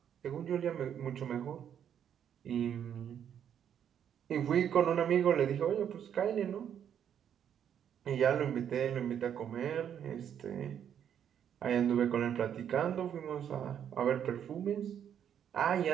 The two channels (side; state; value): left; quieter; 9.0 dB